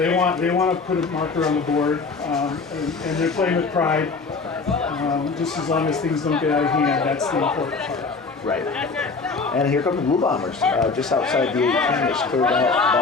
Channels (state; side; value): quieter; right; 4.4 dB